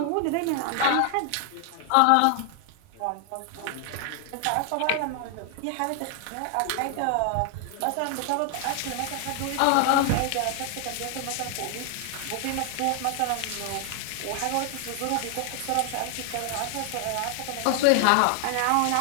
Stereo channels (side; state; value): both; different; correlation 0.00